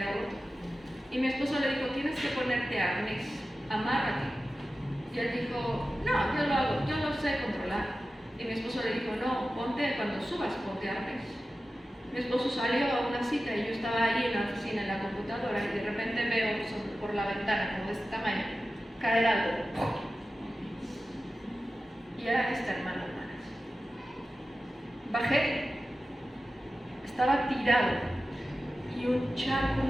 roto. Y mi esposo le dijo, tienes que ponerte arnés, amárrate. Y él dijo, no, yo lo hago, yo lo sé controlar. Y mi esposo le dijo, no, cuando subas, ponte arnés. Mi esposo salió a una cita y yo estaba ahí en la oficina, en la computadora, y de repente veo por la ventana, como de este tamaño, caer algo. Y era este hermano, hermanas. Bajé, estaba tirado y un charco,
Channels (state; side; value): normal; both; correlation 0.94